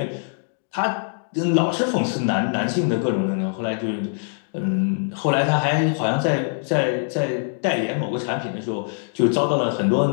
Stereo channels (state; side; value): silent; right; digital silence